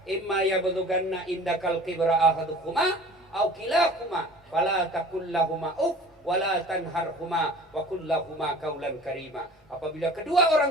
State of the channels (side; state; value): both; normal; correlation 0.44